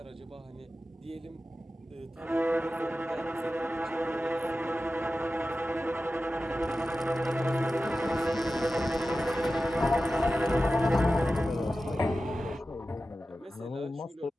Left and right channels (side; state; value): both; normal; correlation 0.94